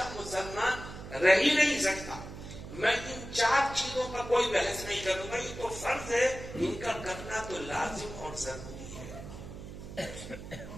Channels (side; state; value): right; noise; hum, 12 dB below the sound